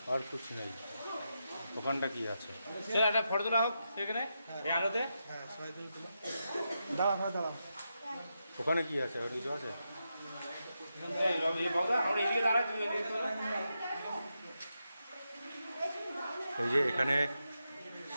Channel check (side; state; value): both; inverted; correlation -0.86